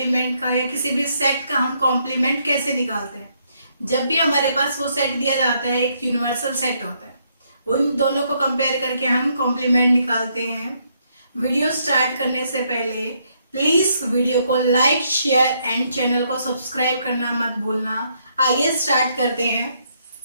का या किसी भी सेट का हम कॉम्प्लीमेंट कैसे निकालते हैं। जब भी हमारे पास वो सेट दिया जाता है, एक यूनिवर्सल सेट होता है, उन दोनों को कंपेयर करके हम कॉम्प्लीमेंट निकालते हैं। वीडियो स्टार्ट करने से पहले प्लीज वीडियो को लाइक, शेयर एंड चैनल को सब्सक्राइब करना मत भूलना। आइए स्टार्ट करते हैं।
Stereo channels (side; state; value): both; inverted; correlation -0.73